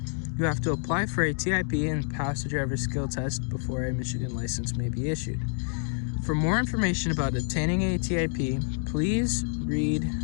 you have to apply for a TIP and pass the driver's skill test before a Michigan license may be issued. For more information about obtaining a TIP, please read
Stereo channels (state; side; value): silent; right; 59 dB below the other